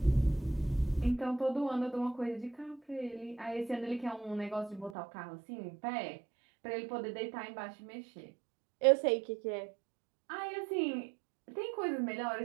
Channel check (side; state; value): left; drops out; at 5.0 s